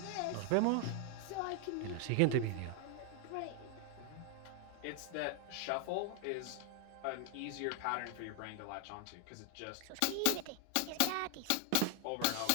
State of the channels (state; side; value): different; both; correlation 0.00